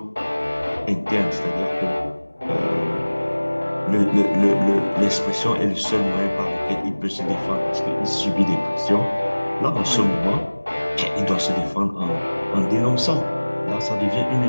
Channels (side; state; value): both; inverted; correlation -1.00